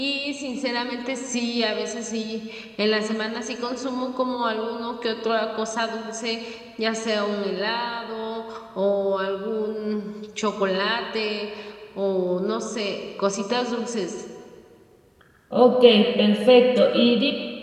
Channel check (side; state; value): both; identical; correlation 1.00